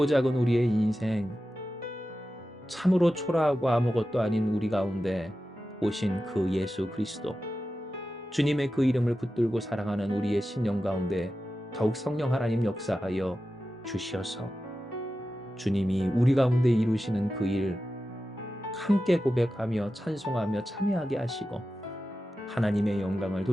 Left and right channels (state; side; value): normal; both; correlation 0.92